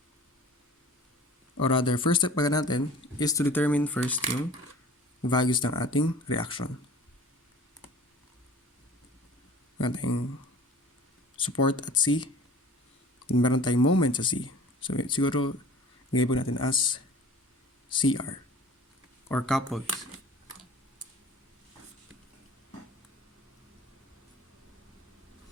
Or rather, first step pala natin is to determine first yung values ng ating reaction. Meron tayong support at C. Meron tayong moment sa C. So, siguro, nilabel natin as CR or coupled.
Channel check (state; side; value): normal; both; correlation 0.45